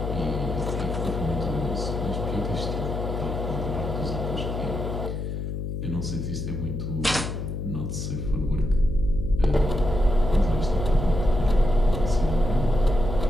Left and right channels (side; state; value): left; noise; hum, 4 dB below the sound